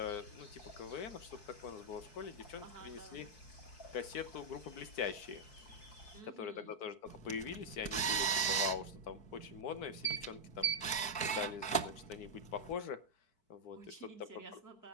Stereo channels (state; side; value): late; right; 4.6 ms